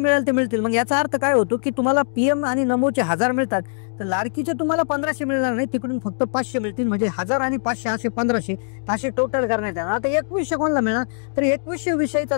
ते मिळतील. मग याचा अर्थ काय होतो की तुम्हाला पीएम आणि नमोचे 1,000 मिळतात तर लाडकीचे तुम्हाला 1,500 मिळणार नाही, तिकडून फक्त 500 मिळतील, म्हणजे 1,000 आणि 500 असे 1,500 असे टोटल करण्यात येणार. आता 2100 कोणाला मिळणार? तर 2100 विषयीचा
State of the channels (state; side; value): silent; right; digital silence